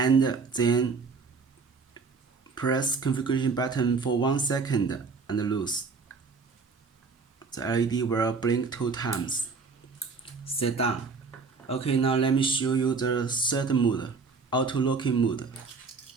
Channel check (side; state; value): left; quieter; 4.7 dB